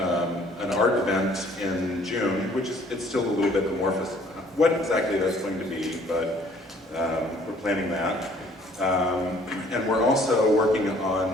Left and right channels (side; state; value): both; normal; correlation 0.58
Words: art event in June, which is, it's still a little bit amorphous what exactly that's going to be, but we're planning that. And we're also working